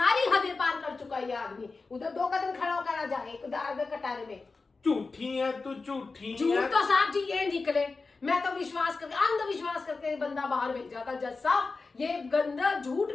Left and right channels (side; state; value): right; quieter; 4.0 dB